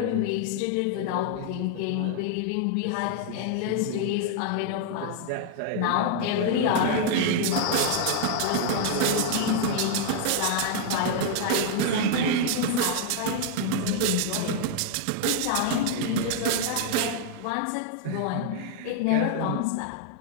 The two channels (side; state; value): both; different; correlation 0.00